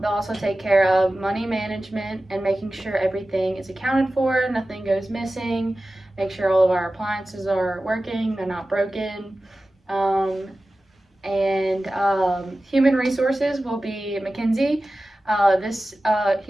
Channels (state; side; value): normal; both; correlation 0.95